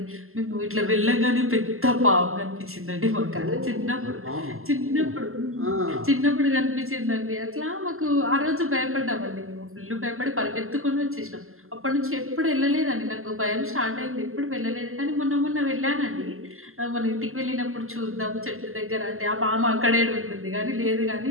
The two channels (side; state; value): left; late; 0.62 ms